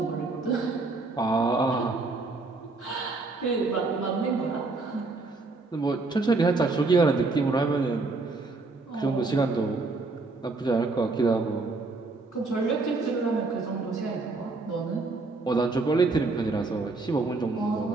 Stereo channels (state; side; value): quieter; left; 3.6 dB